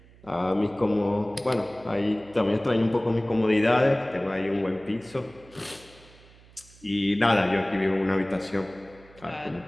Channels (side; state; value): right; noise; hum, 25 dB below the sound